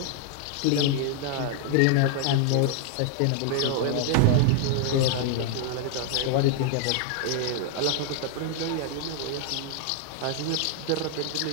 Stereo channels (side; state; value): both; different; correlation 0.00